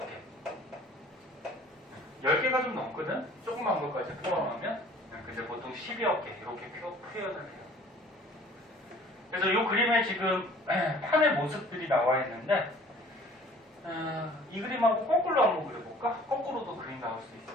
개. 10개가 좀 넘거든? 조그만 것까지 포함하면 근데 보통 10여 개 이렇게 표현을 해요. 그래서 이 그림에 지금 판의 모습들이 나와 있는데 이 그림하고 거꾸로 한번 그려볼까? 거꾸로도 그림 나올 수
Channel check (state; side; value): normal; both; correlation 0.51